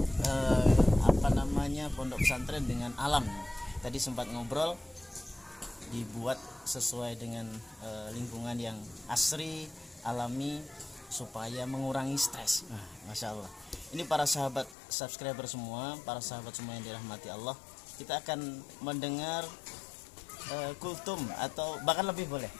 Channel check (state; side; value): drops out; right; at 14.8 s